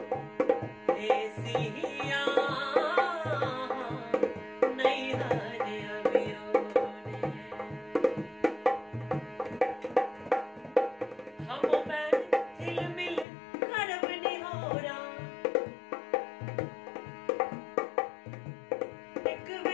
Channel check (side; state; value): right; drops out; at 13.2 s